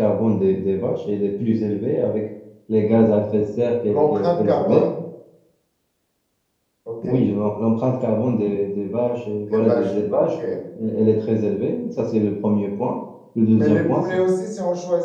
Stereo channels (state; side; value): identical; both; correlation 1.00